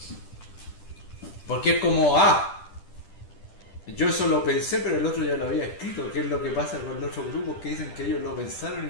Porque es como, yo eso lo pensé, pero el otro ya lo había escrito. ¿Qué es lo que pasa con los otros grupos que dicen que ellos lo pensaron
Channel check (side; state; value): right; late; 10 ms